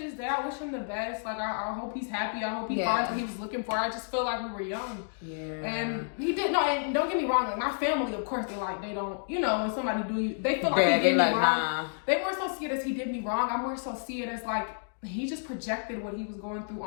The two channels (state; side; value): silent; right; digital silence